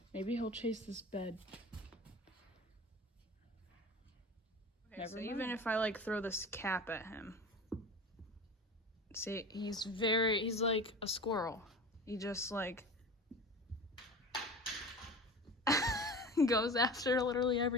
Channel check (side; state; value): both; normal; correlation 0.34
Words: Maybe he'll chase this bed. Okay, so even if I throw this cap at him, see, he's like a squirrel. He just goes after literally